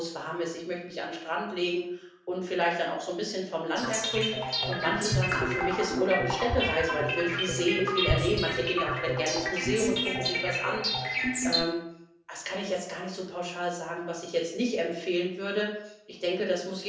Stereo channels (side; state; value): both; identical; correlation 1.00